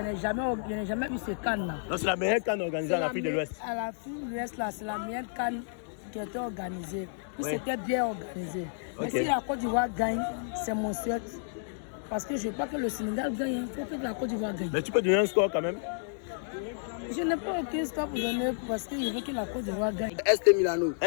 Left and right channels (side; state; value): right; silent; digital silence